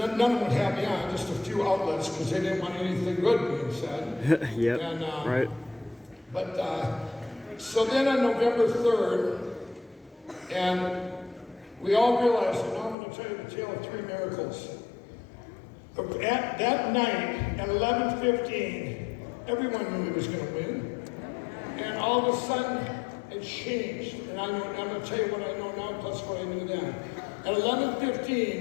of them would have me on. Just a few outlets because they didn't want anything good being said. Yep. And, right. But so then on November 3rd, and we all realized, and now I'm going to tell you the tale of three miracles. At that night, at 11:15, everyone knew he was going to win. And all of a sudden, it changed. And I'm going to tell you what I know now, plus what I knew then. At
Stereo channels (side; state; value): right; drops out; at 13.0 s